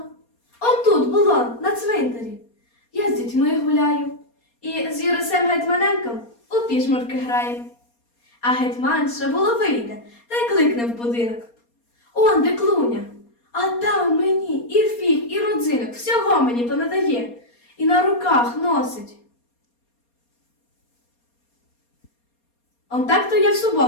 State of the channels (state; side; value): late; right; 4.2 ms